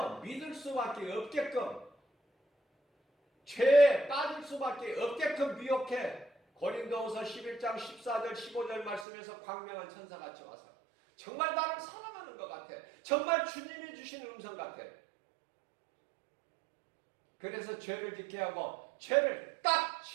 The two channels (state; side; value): drops out; left; at 9.1 s